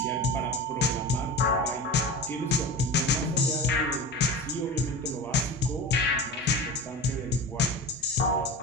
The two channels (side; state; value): both; normal; correlation 0.29